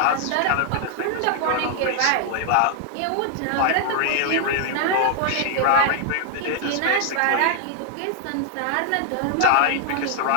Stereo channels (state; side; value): different; both; correlation 0.00